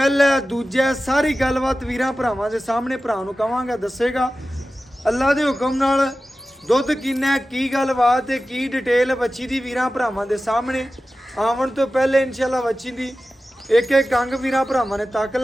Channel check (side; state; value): both; normal; correlation 0.95